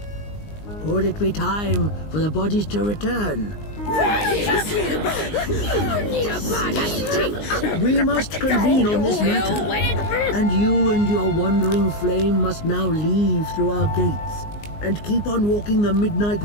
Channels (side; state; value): right; late; 19 ms